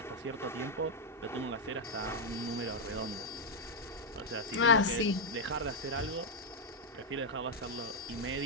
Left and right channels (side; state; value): both; normal; correlation -0.02